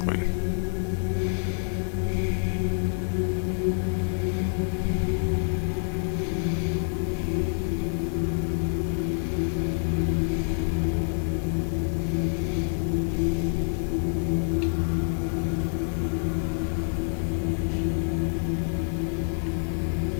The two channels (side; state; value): right; silent; digital silence